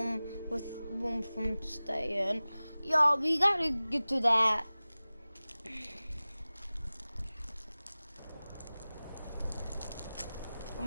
with room from staying. Yo, we gotta get to that. I'm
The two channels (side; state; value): both; inverted; correlation -0.98